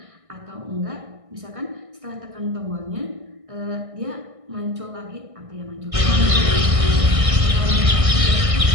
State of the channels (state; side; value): late; left; 1.6 ms